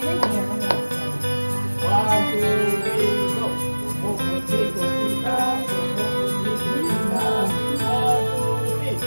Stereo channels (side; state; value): both; inverted; correlation -1.00